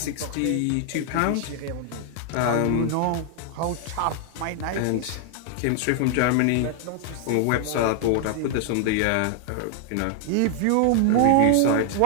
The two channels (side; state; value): both; different; correlation 0.00